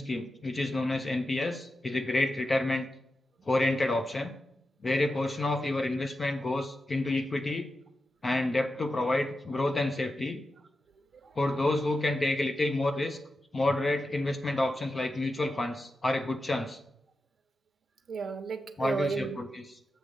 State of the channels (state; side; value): normal; both; correlation 0.90